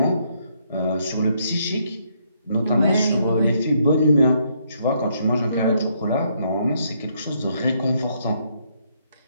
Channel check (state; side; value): inverted; both; correlation -0.73